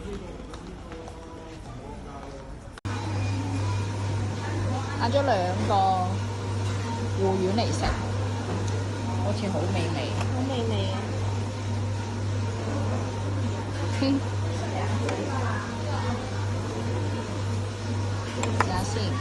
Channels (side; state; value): both; identical; correlation 1.00